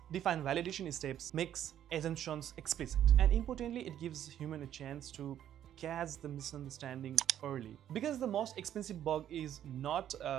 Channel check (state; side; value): quieter; left; 10.8 dB